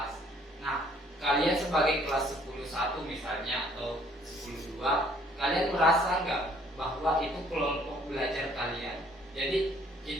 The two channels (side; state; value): both; normal; correlation 0.61